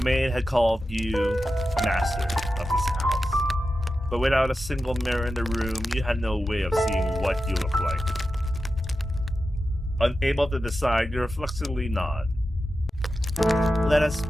maid had called you master of this house. But without a single mirror in the room, you had no way of seeing what you looked like. Unable to decide, you reflexively nod. Let us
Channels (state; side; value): normal; both; correlation 0.91